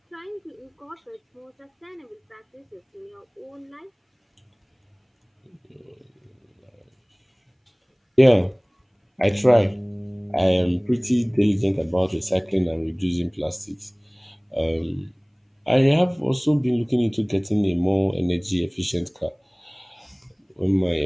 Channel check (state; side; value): identical; both; correlation 1.00